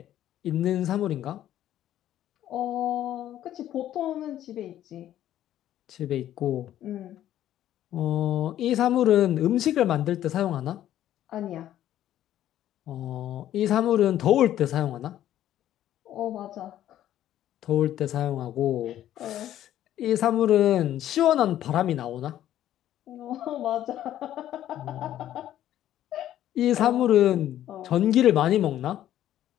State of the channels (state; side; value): quieter; right; 12.2 dB